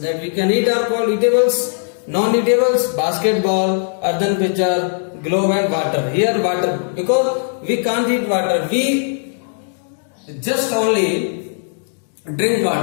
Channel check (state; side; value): silent; right; digital silence